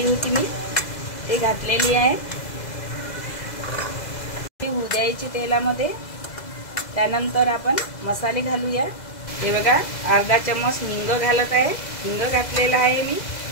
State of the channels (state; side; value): late; right; 2.0 ms